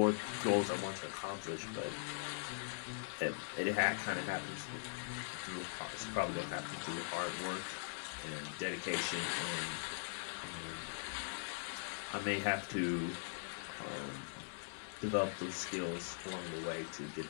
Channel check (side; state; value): right; silent; digital silence